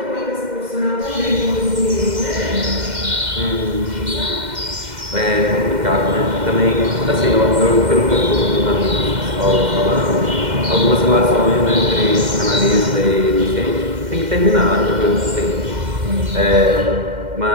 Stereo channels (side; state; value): left; late; 2.1 ms